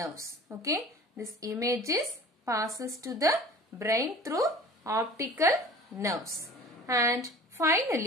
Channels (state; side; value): normal; both; correlation 0.43